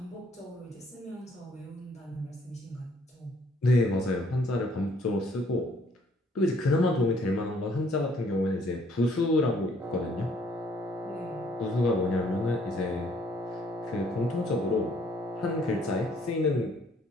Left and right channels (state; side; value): normal; both; correlation 0.63